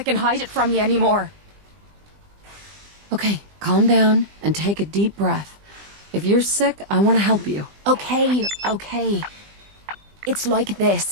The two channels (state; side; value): late; left; 20 ms